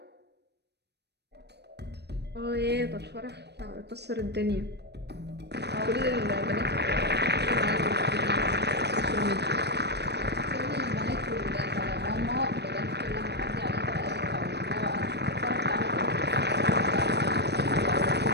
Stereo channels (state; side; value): late; left; 0.49 ms